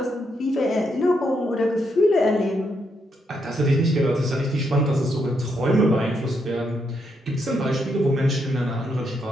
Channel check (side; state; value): both; normal; correlation 0.78